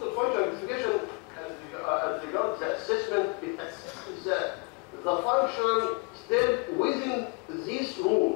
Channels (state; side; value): quieter; right; 30.7 dB